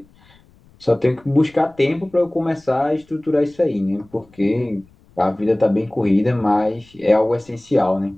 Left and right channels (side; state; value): left; noise; rumble, 29 dB below the sound